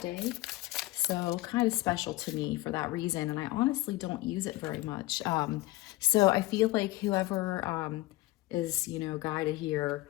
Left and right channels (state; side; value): quieter; right; 18.6 dB